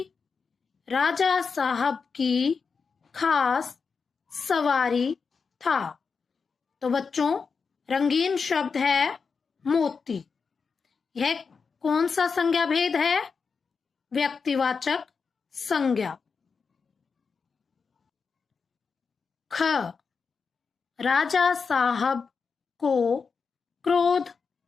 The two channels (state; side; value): quieter; right; 5.3 dB